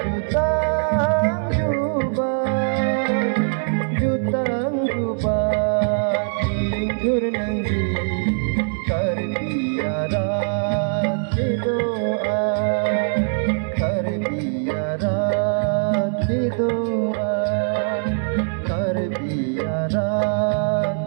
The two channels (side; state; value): left; silent; digital silence